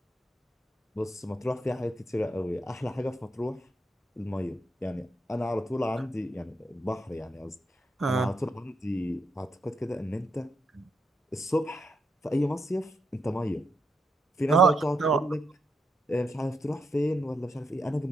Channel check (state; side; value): normal; both; correlation 0.80